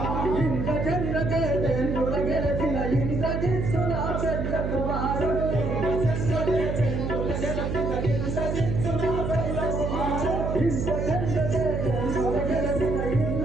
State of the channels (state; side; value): noise; right; hum, 2 dB below the sound